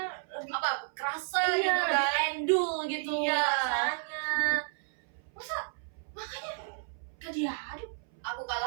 lebih apa? Kerasa iya, gitu lebih kan. endul gitu Iya. rasanya. Masa makanya gak diaduk? Aku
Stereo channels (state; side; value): silent; left; 57 dB below the other